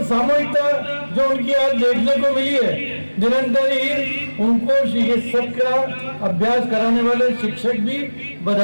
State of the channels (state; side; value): inverted; both; correlation -1.00